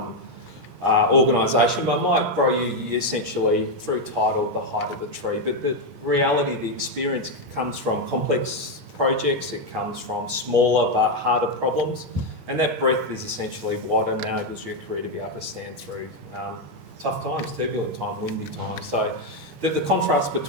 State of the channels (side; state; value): left; late; 15 ms